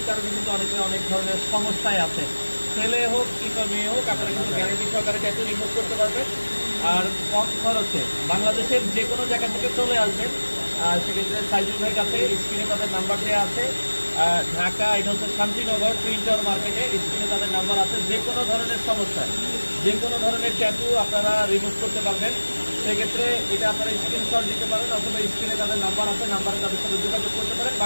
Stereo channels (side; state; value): both; inverted; correlation -1.00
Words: কারণে কিন্তু অনেকে অনেক ধরনের সমস্যায় আছেন। ছেলে হোক কিংবা মেয়ে হোক, আপনারা কিন্তু গ্যারান্টি সহকারে ট্যাটু রিমুভ করতে পারবেন। আর কম খরচে বাংলাদেশের যে কোনো জায়গা থেকে চলে আসবেন। সেক্ষেত্রে সাইজুল ভাইয়ের কাছে স্ক্রিনে তাদের নাম্বার দেওয়া আছে। ঢাকা, এটা হচ্ছে শান্তিনগর প্রিন্টার মার্কেটে, স্ক্রিনে তাদের নাম্বার আছে। যে কোনো ধরনের সমস্যা, যে কোনো ধরনের ট্যাটু আপনারা রিমুভ করতে পারবেন। সেক্ষেত্রে এটা আপনারা স্ক্রিনশট দিতে পারেন, অথবা স্ক্রিনে তাদের নাম্বার আছে, নাম্বারে তাদের সাথে যোগাযোগ করতে পারেন।